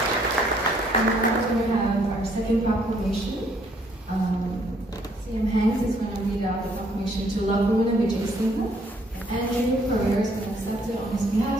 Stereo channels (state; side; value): normal; both; correlation 0.66